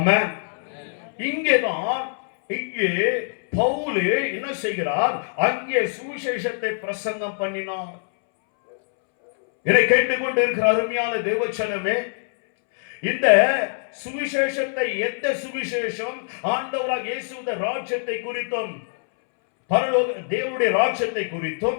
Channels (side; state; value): right; silent; 63 dB below the other